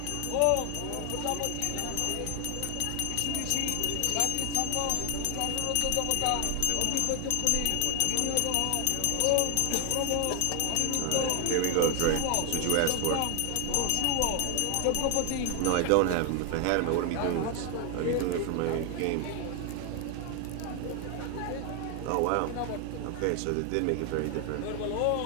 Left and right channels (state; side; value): different; both; correlation 0.00